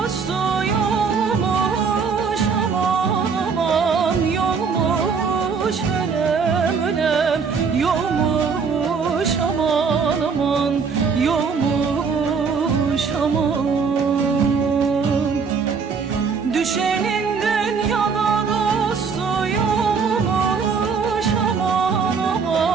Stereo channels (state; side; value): quieter; left; 5.6 dB